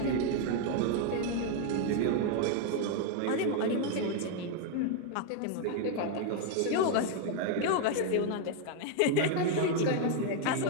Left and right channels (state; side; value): different; both; correlation 0.00